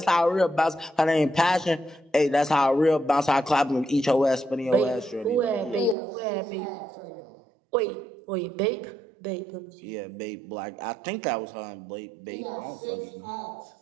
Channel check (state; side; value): drops out; left; at 6.0 s